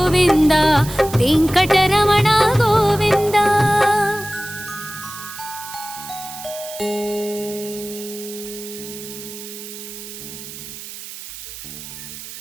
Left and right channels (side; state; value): right; noise; hiss, 12 dB below the sound